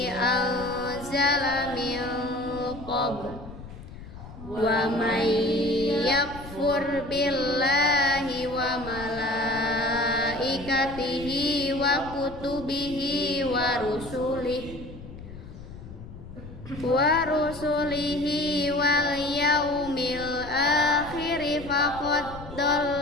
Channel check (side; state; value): left; noise; rumble, 14 dB below the sound